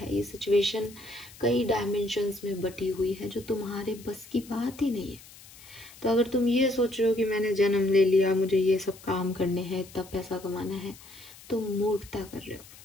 ये सिचुएशन कई डायमेंशंस में बटी हुई है जो तुम्हारे बस की बात ही नहीं है। तो अगर तुम ये सोच रहे हो कि मैंने जन्म ले लिया, मुझे ये सब काम करने हैं, इतना पैसा कमाना है, तुम मूर्खता कर रहे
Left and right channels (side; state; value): left; noise; hiss, 20 dB below the sound